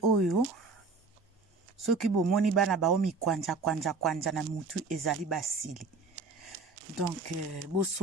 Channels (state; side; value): quieter; left; 4.1 dB